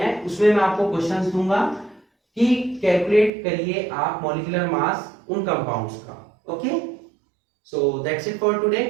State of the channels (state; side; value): drops out; left; at 3.3 s